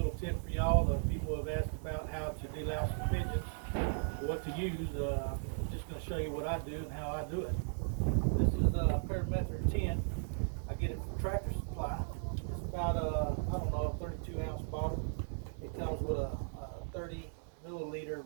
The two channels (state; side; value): silent; left; digital silence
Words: tip for y'all. The people have asked about how to de-louse for pigeons, what to use. I'm just going to show you what I do and how I do it. This is a Birmingham 10. I get it from Tractor Supply. It's about I don't know, a 32-ounce bottle. It comes with a 30 milliliter